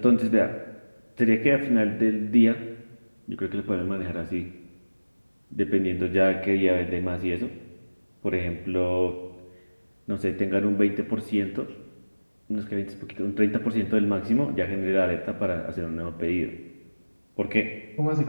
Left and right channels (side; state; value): both; inverted; correlation -1.00